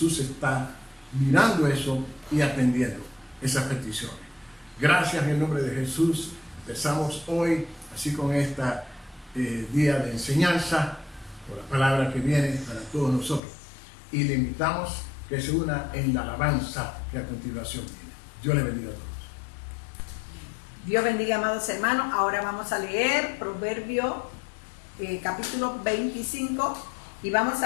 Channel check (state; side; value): drops out; right; at 13.4 s